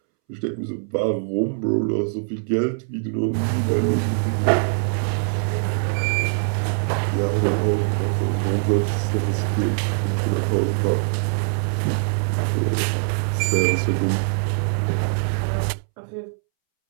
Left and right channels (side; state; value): left; silent; 64 dB below the other